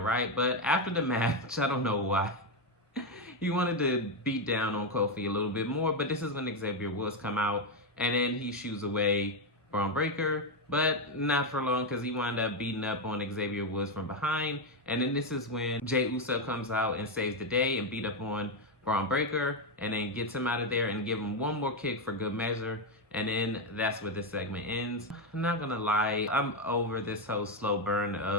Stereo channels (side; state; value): both; normal; correlation 0.07